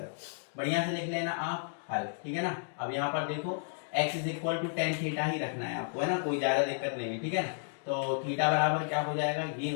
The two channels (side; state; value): right; silent; digital silence